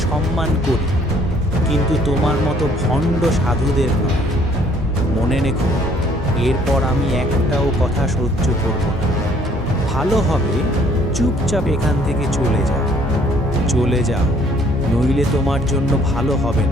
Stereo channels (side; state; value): both; normal; correlation 0.61